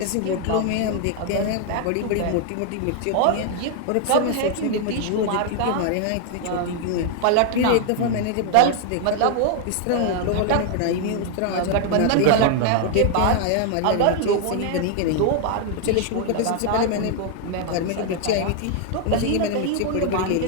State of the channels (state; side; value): different; both; correlation 0.00